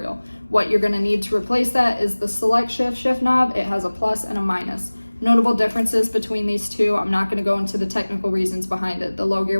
What you're going to need to replace that is the SelectShift shift knob. It has a plus and a minus. Notable differences between these two. I'm not going to go into the technical reasons behind it. The low gear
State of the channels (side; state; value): both; inverted; correlation -1.00